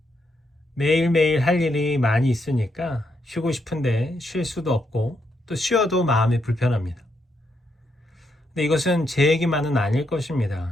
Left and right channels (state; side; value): normal; both; correlation 0.79